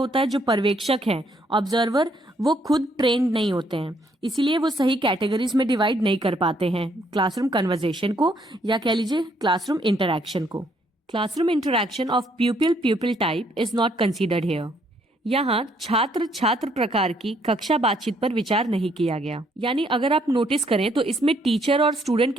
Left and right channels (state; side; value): normal; both; correlation 0.69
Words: है, जो पर्यवेक्षक हैं ऑब्जर्वर, वो खुद ट्रेंड नहीं होते हैं, इसीलिए वो सही कैटेगरीज में डिवाइड नहीं कर पाते हैं क्लासरूम कन्वर्जेशन को, या कह लीजिए क्लासरूम इंटरैक्शन को। Classroom interaction of प्यूपिल type is not considered here. यहाँ छात्र छात्र प्रकार की कक्षा बातचीत पर विचार नहीं किया गया। यानी अगर आप नोटिस करें तो इसमें टीचर और स्टूडेंट